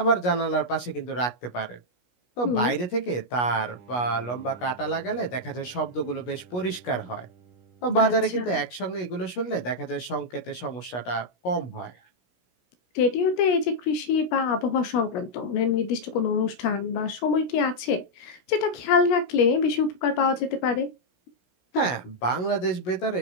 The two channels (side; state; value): right; late; 16 ms